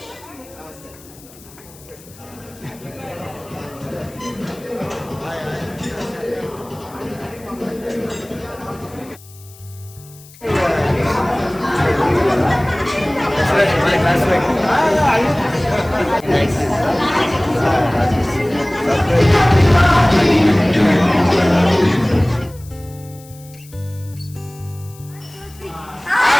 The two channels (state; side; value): noise; left; hiss, 23 dB below the sound